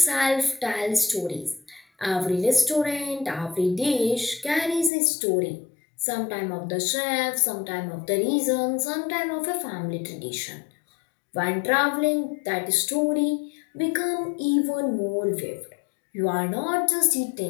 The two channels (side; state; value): right; drops out; at 4.9 s